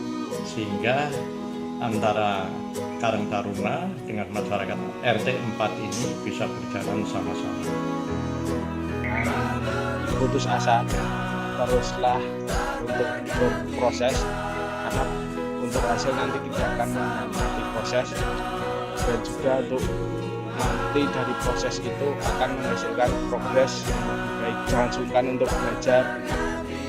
sehingga antara Karang Taruna dengan masyarakat RT 4 ini bisa berjalan sama-sama. Putus asa, teruslah untuk berproses, karena untuk hasil nanti tidak akan menikmati proses, dan juga untuk nanti dari proses itu akan menghasilkan progres yang lebih baik. Jangan sungkan untuk belajar.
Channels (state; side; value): identical; both; correlation 1.00